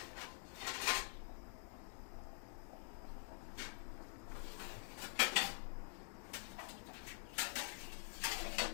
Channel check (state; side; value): silent; right; digital silence